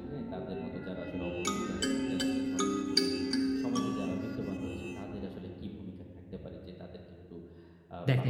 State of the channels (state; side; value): identical; both; correlation 1.00